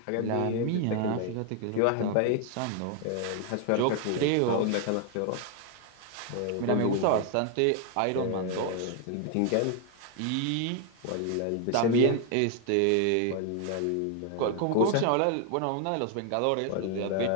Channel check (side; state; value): both; different; correlation 0.00